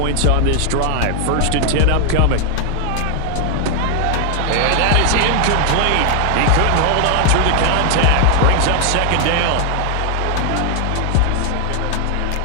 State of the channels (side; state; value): both; different; correlation 0.00